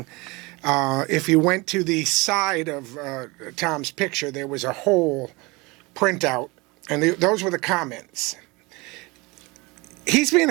If you went to the side of Tom's picture, there was a whole printout, and those were the comments. He's being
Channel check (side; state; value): left; quieter; 24.8 dB